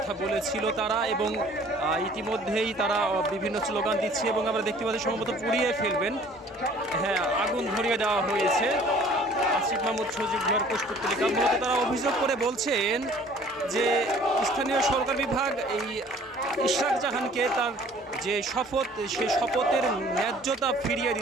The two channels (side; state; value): both; normal; correlation 0.53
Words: বলেছিল তারা, এবং ইতিমধ্যেই তারা বিভিন্ন স্লোগান দিচ্ছে এবং আমরা দেখতে পাচ্ছি সম্ভবত পুড়িয়ে ফেলবেন। হ্যাঁ, আগুন ধরিয়ে দেওয়া হয়েছে আসিফ মাহমুদ সজীব ভুঁইয়ার পুষ্পোত্তলিকা। মূলত তারা অভিযোগ করে বলছেন যে স্থানীয় সরকার বিভাগ এই ইশরাক জাহানকে তার যে শপথ, সে শপথের ন্যায্যতা ফিরিয়ে